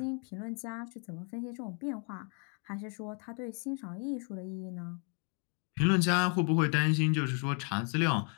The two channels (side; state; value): right; quieter; 39.9 dB